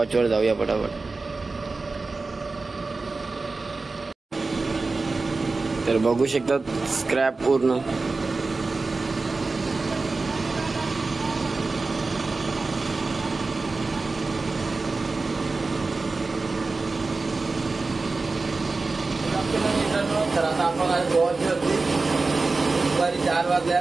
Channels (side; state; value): left; quieter; 3.8 dB